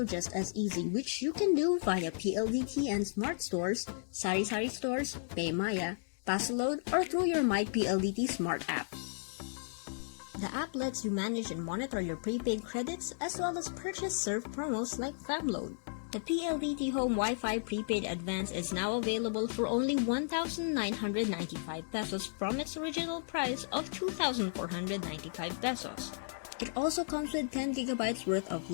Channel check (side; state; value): right; silent; digital silence